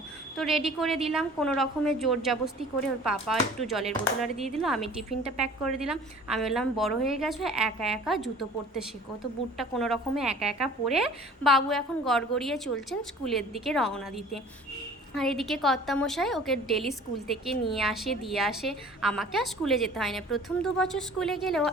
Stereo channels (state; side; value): normal; both; correlation 0.48